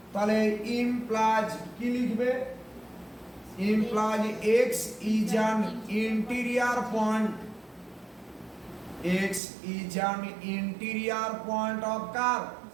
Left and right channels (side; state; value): left; drops out; at 9.4 s